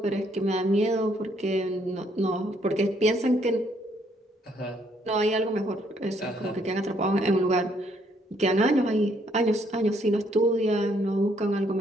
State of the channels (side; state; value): both; normal; correlation 0.69